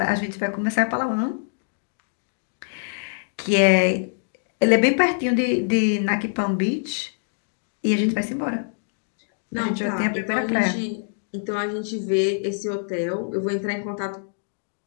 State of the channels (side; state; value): right; silent; digital silence